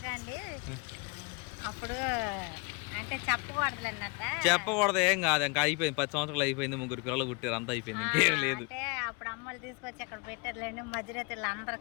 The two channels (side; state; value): right; quieter; 31.1 dB